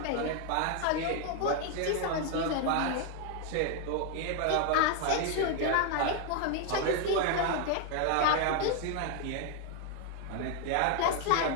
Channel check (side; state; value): both; different; correlation 0.01